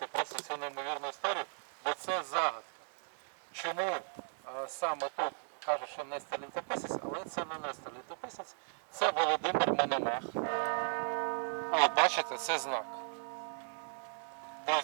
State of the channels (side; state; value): left; silent; digital silence